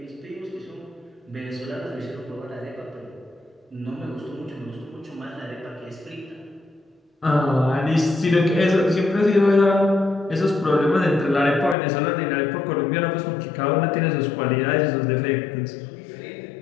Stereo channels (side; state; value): right; drops out; at 11.8 s